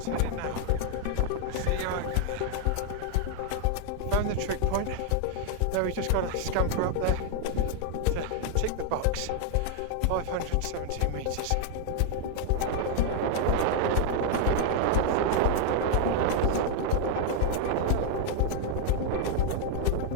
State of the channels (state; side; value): different; both; correlation 0.00